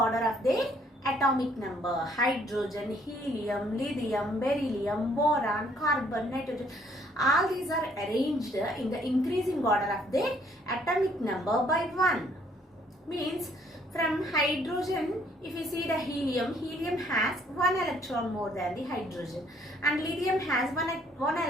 of their atomic number. Hydrogen, helium, lithium, beryllium, boron, carbon, nitrogen. All these are arranged in the increasing order of their atomic number by 1. Means from hydrogen, if you see the helium has 1 electron more than the hydrogen, and lithium has one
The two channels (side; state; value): both; normal; correlation 0.64